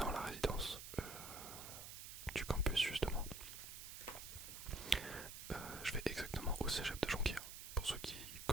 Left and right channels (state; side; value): noise; right; hiss, 10 dB below the sound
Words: la résidence du campus justement. Je vais exactement au cégep de Jonquière, pour ceux qui